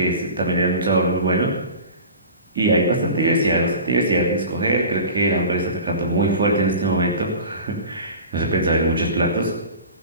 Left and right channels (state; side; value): inverted; both; correlation -0.37